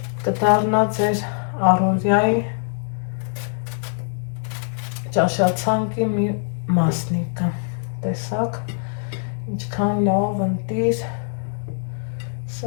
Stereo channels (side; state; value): right; silent; digital silence